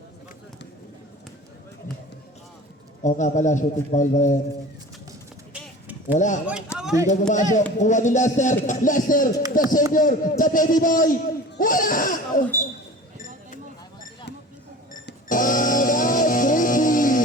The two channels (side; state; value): both; normal; correlation 0.39